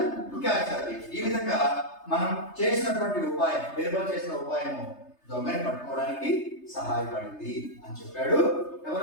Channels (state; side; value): late; right; 3.3 ms